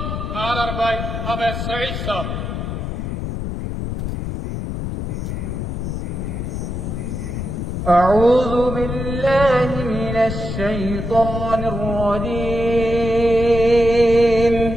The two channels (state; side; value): noise; left; rumble, 4 dB below the sound